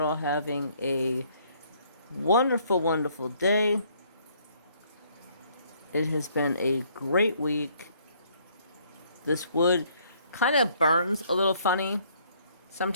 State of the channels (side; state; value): both; inverted; correlation -0.64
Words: having a wonderful, wonderful day. It has been a great week. This wood kind of burns a little funny